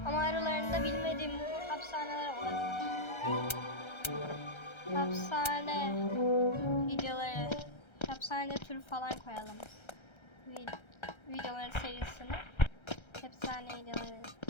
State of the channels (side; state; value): right; late; 1.3 ms